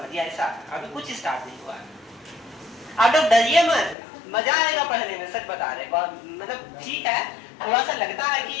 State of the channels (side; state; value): right; drops out; at 4.0 s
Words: ऐसा, अभी कुछ स्टार्ट नहीं हुआ है। आप लोग डरिए मत, मजा आएगा पढ़ने में, सच बता रहे, मतलब ठीक है, थोड़ा सा लगता है कि